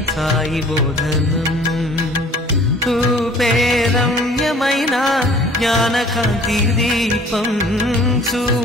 సాయి బోధనం. రూపే రమ్యమైన జ్ఞానకాంతి దీపం,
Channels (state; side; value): normal; both; correlation 0.51